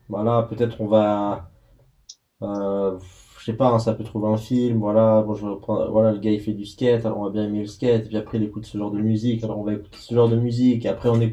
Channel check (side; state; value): both; identical; correlation 1.00